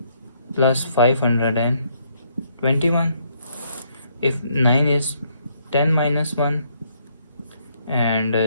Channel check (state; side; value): inverted; both; correlation -0.71